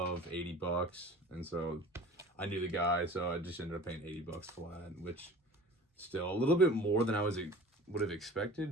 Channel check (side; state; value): both; normal; correlation 0.42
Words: 80 bucks. And so I knew the guy, so I just ended up paying 80 bucks for that, which still a little bit more than I would have